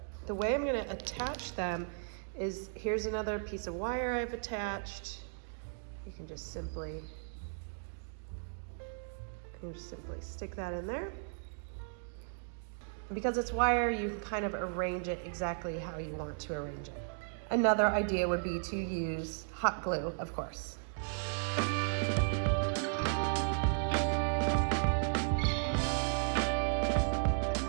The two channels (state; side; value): silent; left; digital silence